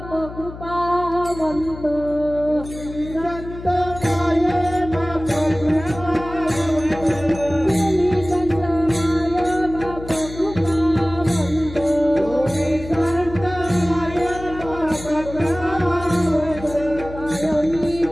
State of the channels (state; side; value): noise; left; hum, 13 dB below the sound